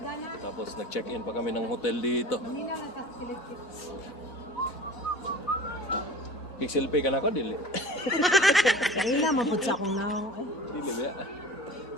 Tapos nag-check-in pa kami ng hotel dito. Pixel pay ka na ako, dili? Kaya na mapud sa akong nang. Dili ba?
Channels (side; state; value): both; normal; correlation 0.40